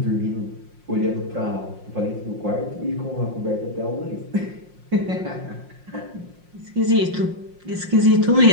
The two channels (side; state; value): left; late; 5.6 ms